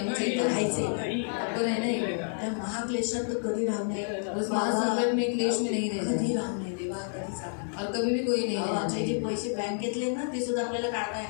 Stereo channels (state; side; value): silent; right; 58 dB below the other